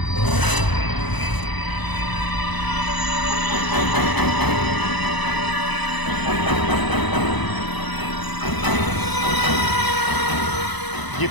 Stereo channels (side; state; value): right; late; 1.0 ms